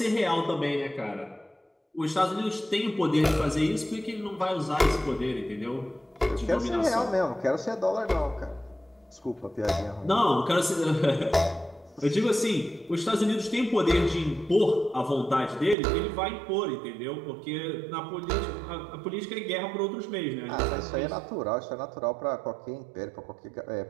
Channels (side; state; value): left; drops out; at 15.8 s